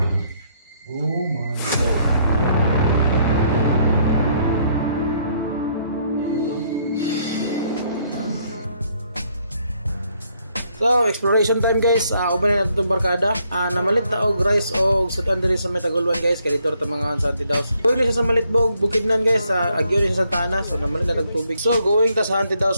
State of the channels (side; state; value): both; inverted; correlation -0.70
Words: Oh my God. So, exploration time guys. Uban na natin itong barkada. Namalit na og rice o sudan diri sa Metagulwan guys. Kaya dito ito mga Santi Daos. Going siya sa Malitbog, Bukidnon guys. Agyo rin siya sa Santa Ana. So, namalit na tubig. So, going ta sa Santi